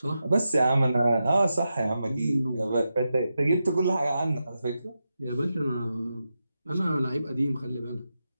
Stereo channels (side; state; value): both; inverted; correlation -0.89